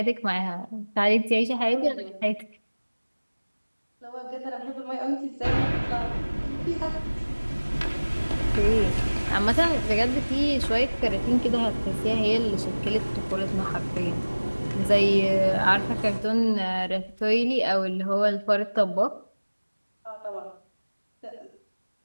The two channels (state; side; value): inverted; both; correlation -1.00